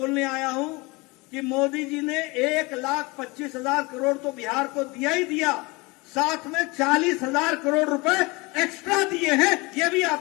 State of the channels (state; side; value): quieter; right; 24.9 dB